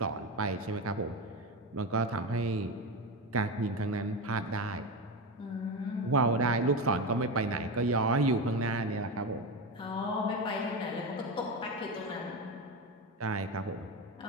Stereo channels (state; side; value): normal; both; correlation 0.18